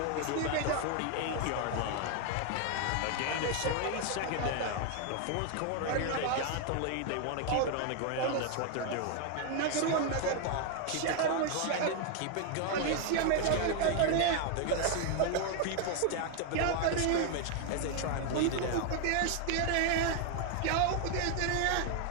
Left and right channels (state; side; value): different; both; correlation 0.01